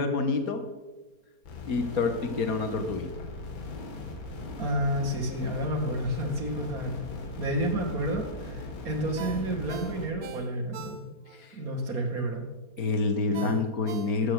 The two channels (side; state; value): left; late; 4.3 ms